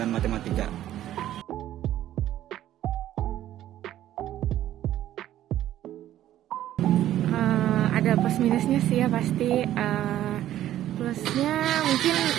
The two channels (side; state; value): left; quieter; 12.6 dB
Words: Matematika. Ada plus minusnya sih ya pasti. Plusnya mungkin